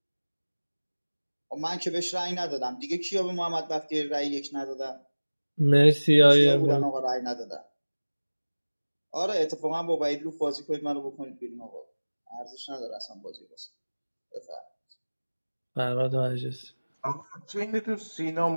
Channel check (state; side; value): inverted; both; correlation -1.00